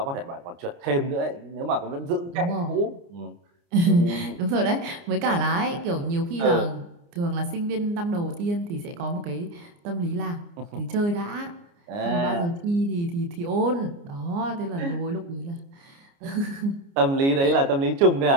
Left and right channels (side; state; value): left; late; 29 ms